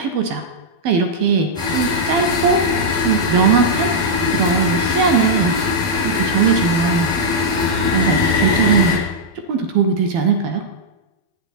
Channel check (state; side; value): late; left; 12 ms